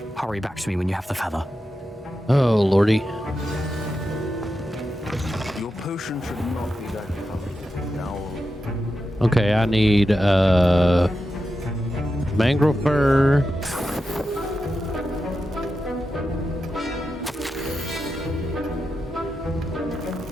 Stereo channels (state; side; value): normal; both; correlation 0.89